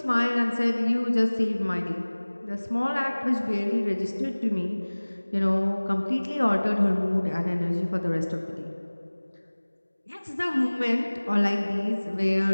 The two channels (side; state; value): both; inverted; correlation -1.00